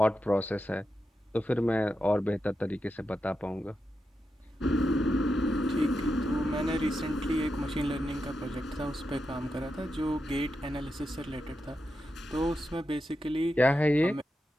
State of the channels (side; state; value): both; normal; correlation 0.88